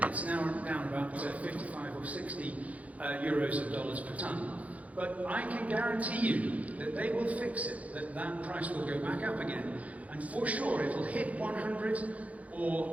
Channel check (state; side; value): late; left; 0.068 ms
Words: It's now down about 55 or 60 euros of dollars per tonne. But I can guarantee you that they will fix it, that price will go back up again, and for sure it will hit 100